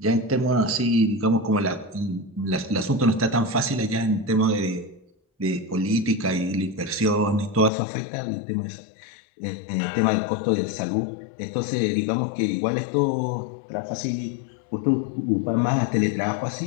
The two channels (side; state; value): right; drops out; at 7.7 s